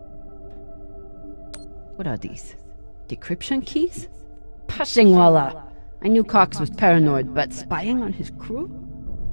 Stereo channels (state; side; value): inverted; both; correlation -1.00